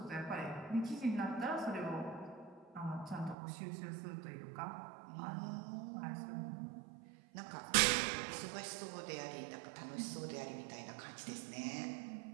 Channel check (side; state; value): left; drops out; at 3.4 s